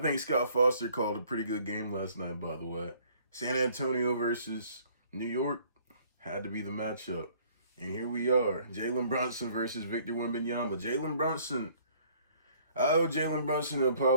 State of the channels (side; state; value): both; inverted; correlation -0.59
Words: Scott Foster called a pretty good game last night, by the way. San Antonio versus New York had to be the matchup. And here we are, Jalen Brunson versus Victor Wembanyama. I owe Jalen Brunson an